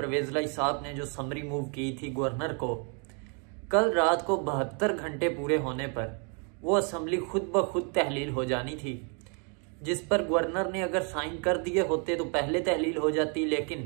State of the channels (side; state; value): left; quieter; 37.9 dB